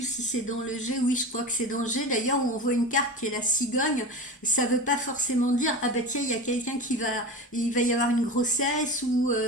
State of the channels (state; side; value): normal; both; correlation 0.28